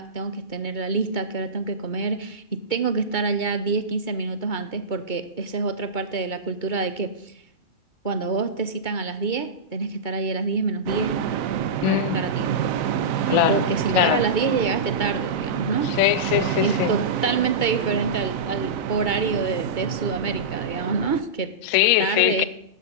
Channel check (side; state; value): right; late; 2.2 ms